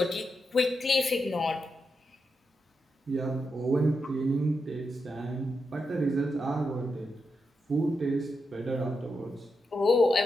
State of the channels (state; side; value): normal; both; correlation 0.85